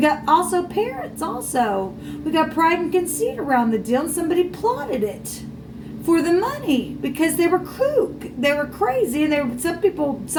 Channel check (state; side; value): identical; both; correlation 1.00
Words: also parents also. We got pride and conceit around the deal, and somebody plotted it for the money because they were kook. They were crazy, and some people